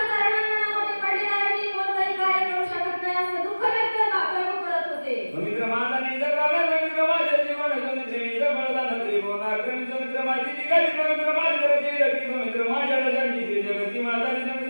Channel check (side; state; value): both; inverted; correlation -1.00